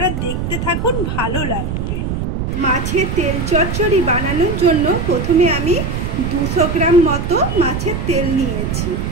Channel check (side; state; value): right; noise; rumble, 2 dB below the sound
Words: দেখতে থাকুন, ভালো লাগবে। মাছের তেল চচ্চড়ি বানানোর জন্য প্রথমে আমি 200 গ্রাম মতো মাছের তেল নিয়েছি।